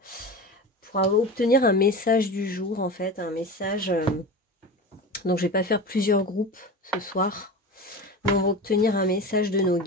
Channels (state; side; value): normal; both; correlation 0.29